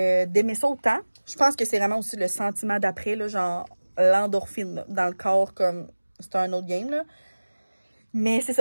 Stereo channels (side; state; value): both; inverted; correlation -1.00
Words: ça autant. Je pense que c'est vraiment aussi le sentiment d'après, là, genre l'endorphine là, dans le corps, comme c'est un autre game, là. Mais c'est